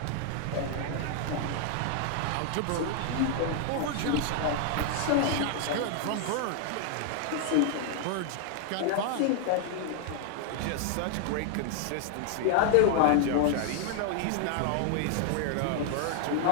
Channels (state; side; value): different; both; correlation 0.00